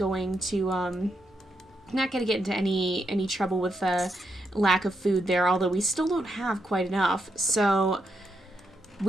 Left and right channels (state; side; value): normal; both; correlation 0.82